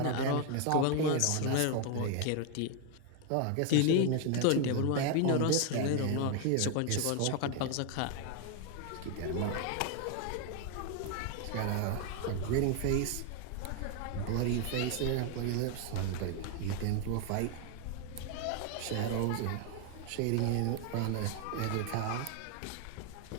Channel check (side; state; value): both; different; correlation 0.01